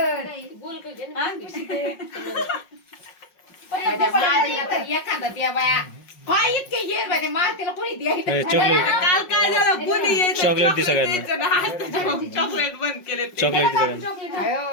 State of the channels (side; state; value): right; late; 5.5 ms